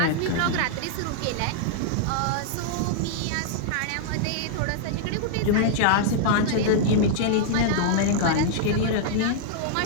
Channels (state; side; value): different; both; correlation -0.01